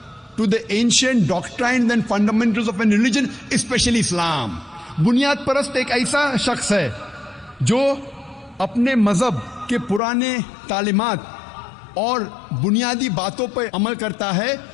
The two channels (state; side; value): drops out; right; at 10.0 s